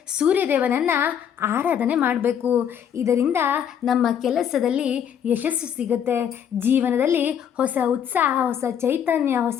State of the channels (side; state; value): right; quieter; 8.7 dB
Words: ಸೂರ್ಯದೇವನನ್ನು ಆರಾಧನೆ ಮಾಡಬೇಕು. ಇದರಿಂದ ನಮ್ಮ ಕೆಲಸದಲ್ಲಿ ಯಶಸ್ಸು ಸಿಗುತ್ತೆ, ಜೀವನದಲ್ಲಿ ಹೊಸ ಉತ್ಸಾಹ, ಹೊಸ ಚೈತನ್ಯ,